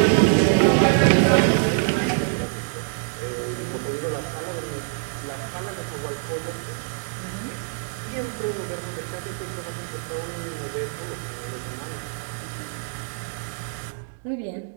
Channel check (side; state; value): left; silent; digital silence